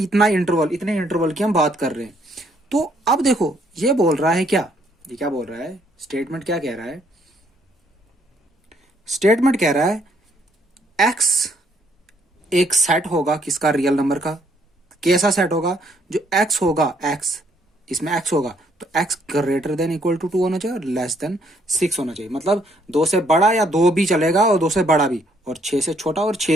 इंटरवल, इतने इंटरवल की हम बात कर रहे हैं। तो अब देखो ये बोल रहा है क्या? ये क्या बोल रहा है? स्टेटमेंट क्या कह रहा है? स्टेटमेंट कह रहा है एक्स एक सेट होगा किसका? रियल नंबर का। कैसा सेट होगा? जो एक्स होगा, एक्स इसमें एक्स होगा तो x greater than equal to 2 होना चाहिए और लेस देन 6 होना चाहिए। मतलब 2 से बड़ा या 2 भी चलेगा और 2 से बड़ा भी, और 6 से छोटा और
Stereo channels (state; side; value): normal; both; correlation 0.68